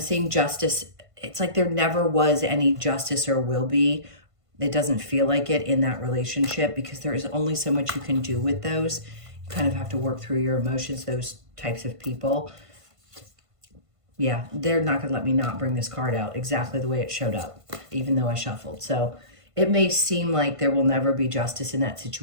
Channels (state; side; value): late; left; 1.5 ms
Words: justice. It's like there never was any justice or will be. It doesn't feel like it in that relationship because there is only so much you can do with those. You kind of have to work through your emotions, those types of people. Yeah, they're not going to let me not bring this card out exactly the way it showed up, even though I shuffled. So it may seem like there will never be justice in that